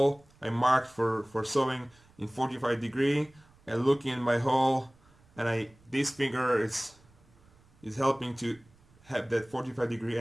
I marked for sewing in 45 degree. I look in my hole, and this finger is helping to have that 45 degree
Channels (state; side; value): noise; right; rumble, 29 dB below the sound